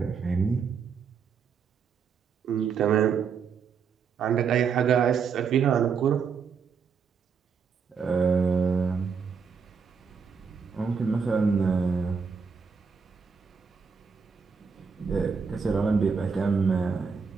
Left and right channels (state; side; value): quieter; left; 5.9 dB